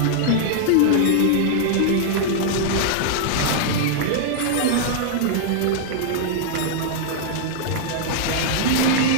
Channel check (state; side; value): different; both; correlation -0.01